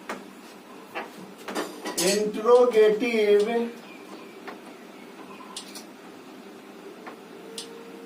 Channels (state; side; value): identical; both; correlation 1.00